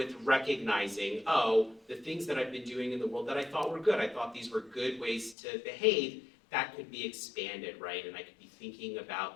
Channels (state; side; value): drops out; right; at 5.4 s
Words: recognizing, the things that I've been doing in the world that I thought were good, I thought these were good ways to behave, that could be expanded, right? And I could be thinking